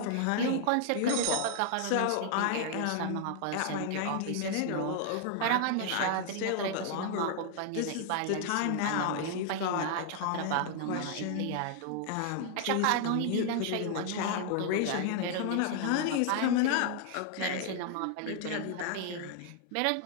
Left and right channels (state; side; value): different; both; correlation 0.00